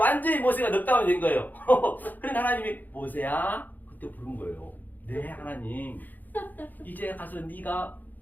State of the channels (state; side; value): late; right; 0.085 ms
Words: 모세가 넉다운이 된 거예요. 그러니까 하나님이 모세야 그때 부른 거예요. 네 하나님 이제 가서 네가